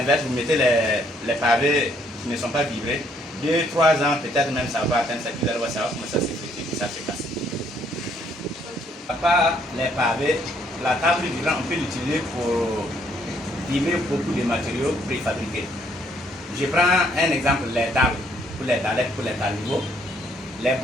vous mettez les pavés qui ne sont pas vibrés, 2-3 ans, peut-être même ça va atteindre ça, vous allez voir ça va commencer à s'effriter et ça se casse. À part les pavés, la table vibrante, on peut l'utiliser pour vibrer beaucoup de matériaux préfabriqués. Je prends un exemple, les tables, pour les dallettes, pour les talibos, les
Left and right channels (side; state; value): both; normal; correlation 0.68